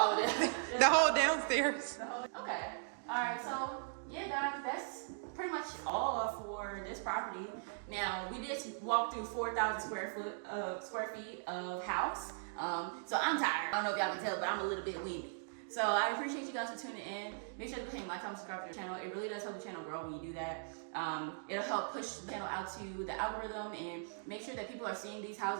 of it. The whole downstairs. Okay. All right. So yeah, guys, that's pretty much all for this property. Now we just walked through 4,000 square feet of house. So I'm tired. I don't know if y'all can tell, but I'm a little bit winded. So I appreciate you guys for tuning in. Make sure to go ahead and like, comment, subscribe to the channel. It really does help the channel grow when you do that. It'll help push the channel out to the algorithm and make sure that people are seeing these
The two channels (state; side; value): silent; left; digital silence